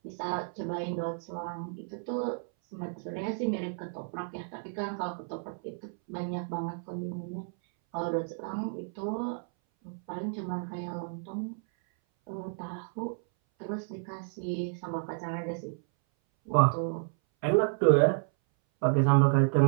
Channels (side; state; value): left; silent; 57 dB below the other